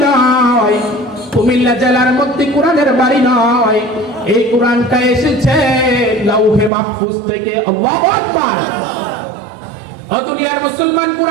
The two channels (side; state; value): left; drops out; at 6.7 s